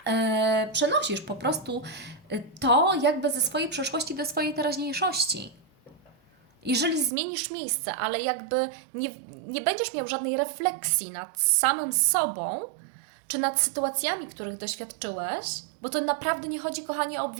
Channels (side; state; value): left; drops out; at 7.1 s